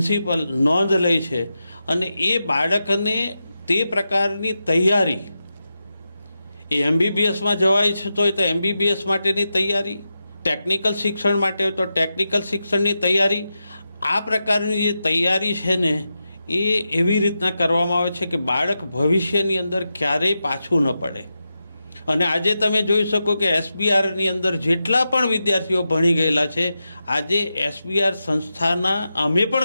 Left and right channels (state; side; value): inverted; both; correlation -0.89